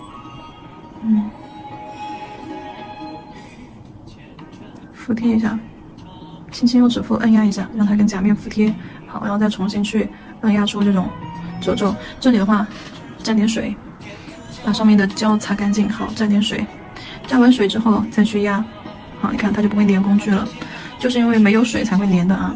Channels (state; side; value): identical; both; correlation 1.00